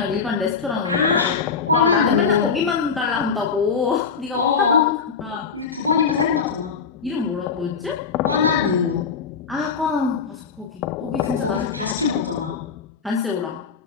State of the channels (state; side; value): quieter; right; 5.8 dB